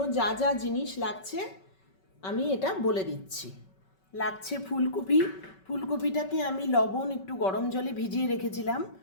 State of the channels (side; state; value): right; late; 5.3 ms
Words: যা যা জিনিস লাগছে আমি এটা বলে দিচ্ছি। লাগছে ফুলকপি। ফুলকপিটাকে আমি লবণ একটু গরম জলে ভিজিয়ে রেখেছিলাম।